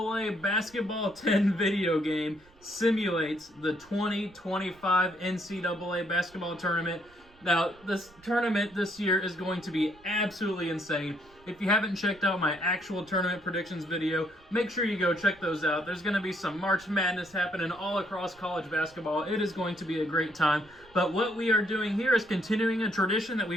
Basketball 10 video game simulates the 2025 NCAA Basketball Tournament. Now, this tournament this year is going to be absolutely insane. If you haven't checked out my actual tournament predictions video, make sure you go check those out. There's going to be some March Madness happening all across college basketball. It is going to be a great time. But what we are doing here is continuing a tradition that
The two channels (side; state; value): right; noise; rumble, 27 dB below the sound